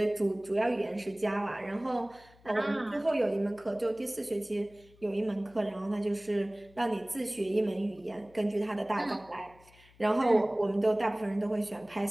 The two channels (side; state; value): left; noise; hum, 27 dB below the sound